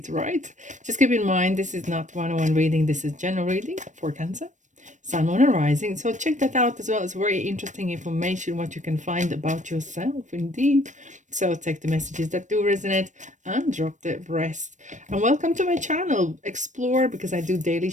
right? Just keep in mind, this is not one-on-one reading. This is general reading for Cancer, Sun, Moon, and Rising. So check that out as well. It's very interesting information, what you can find about yourself, indeed. So take the messages that do resonate and drop the rest. And welcome to my channel, Explore, because I do daily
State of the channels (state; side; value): late; left; 0.35 ms